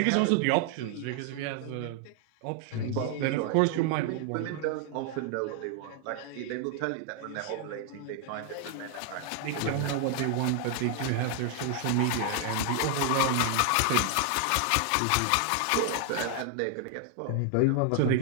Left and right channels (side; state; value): both; different; correlation 0.00